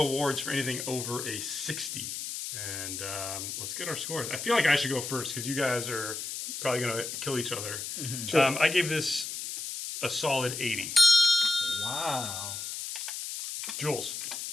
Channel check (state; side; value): noise; left; hiss, 6 dB below the sound